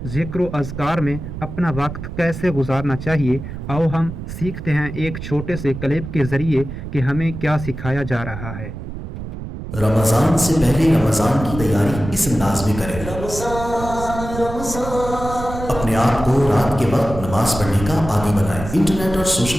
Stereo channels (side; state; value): right; noise; rumble, 9 dB below the sound